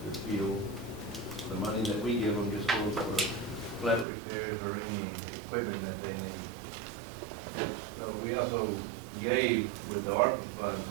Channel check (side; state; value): left; drops out; at 4.0 s